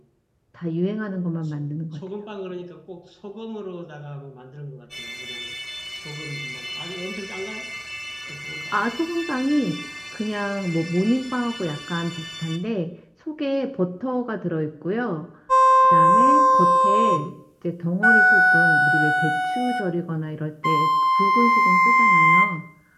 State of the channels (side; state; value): both; identical; correlation 1.00